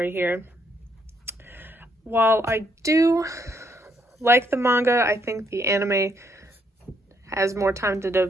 here. While I do like the manga, I think the anime has more time to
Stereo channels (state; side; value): normal; both; correlation 0.73